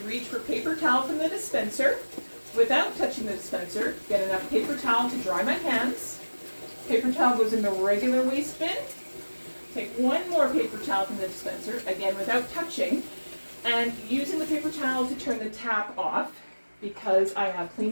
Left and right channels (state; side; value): inverted; both; correlation -1.00